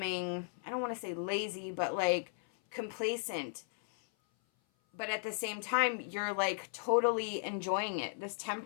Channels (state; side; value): silent; right; 54 dB below the other